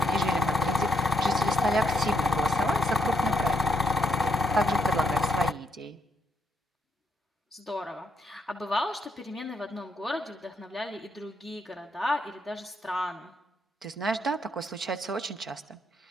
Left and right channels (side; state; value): both; normal; correlation 0.75